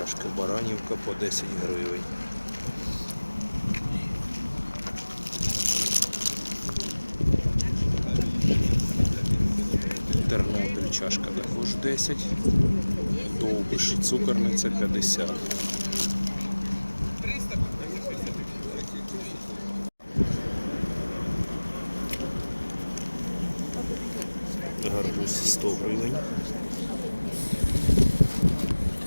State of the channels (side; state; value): both; inverted; correlation -1.00